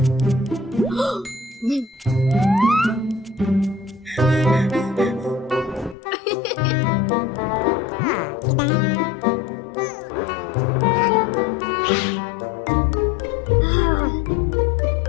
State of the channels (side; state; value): right; drops out; at 6.0 s